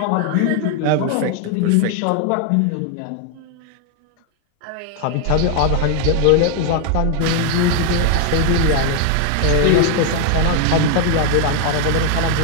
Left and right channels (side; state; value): both; different; correlation 0.00